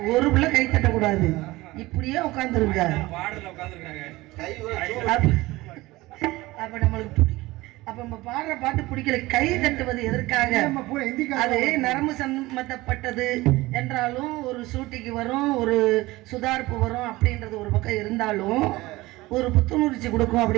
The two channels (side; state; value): left; quieter; 19.6 dB